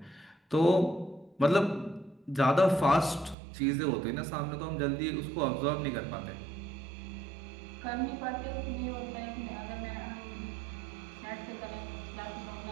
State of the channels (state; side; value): drops out; left; at 3.4 s